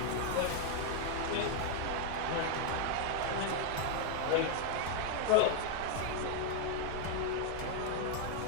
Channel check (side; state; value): both; different; correlation 0.00